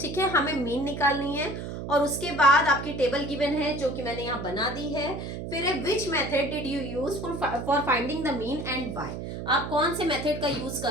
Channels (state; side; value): noise; right; hum, 7 dB below the sound